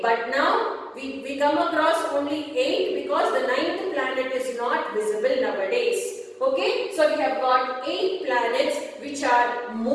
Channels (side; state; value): both; identical; correlation 1.00